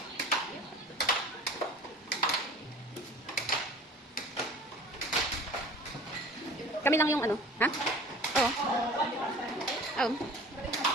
Kami lang yung ano, ha? Oo. Oo.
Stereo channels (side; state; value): both; normal; correlation 0.43